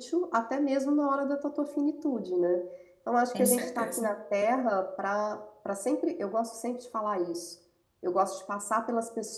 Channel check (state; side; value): identical; both; correlation 1.00